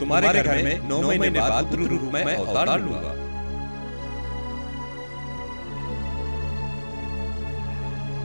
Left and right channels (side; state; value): both; inverted; correlation -1.00